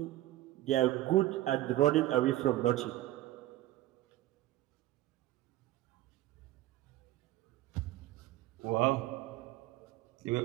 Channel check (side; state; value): left; quieter; 15.7 dB